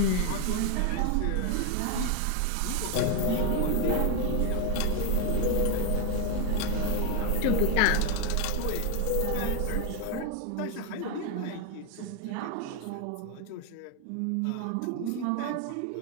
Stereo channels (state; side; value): different; both; correlation 0.01